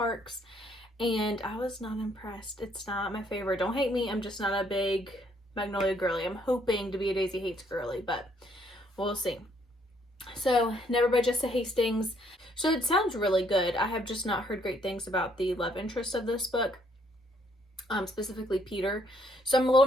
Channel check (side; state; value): both; normal; correlation 0.68